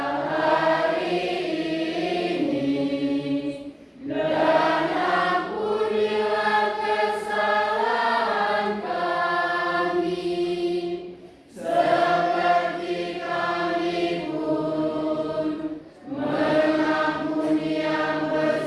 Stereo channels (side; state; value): both; identical; correlation 1.00